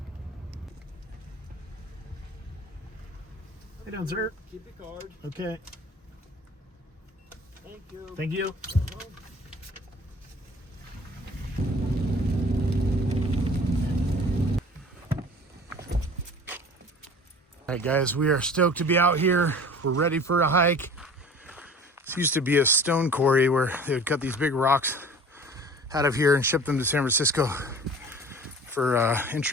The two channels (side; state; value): both; normal; correlation 0.44